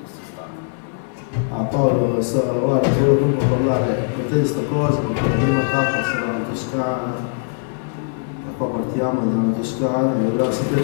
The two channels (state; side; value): silent; right; 65 dB below the other